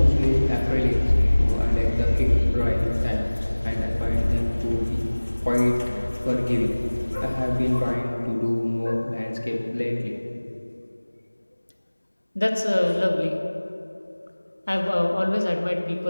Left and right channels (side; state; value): both; inverted; correlation -1.00